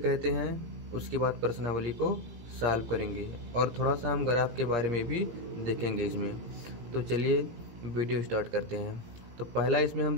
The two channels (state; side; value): late; left; 17 ms